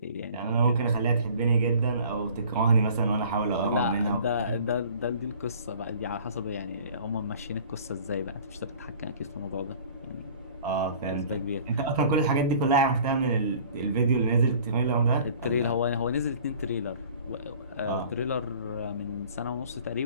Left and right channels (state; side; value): inverted; both; correlation -0.49